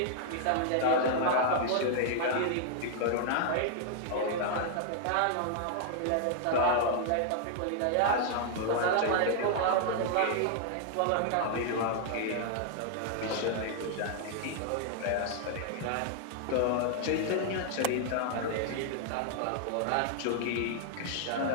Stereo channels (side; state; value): both; different; correlation -0.01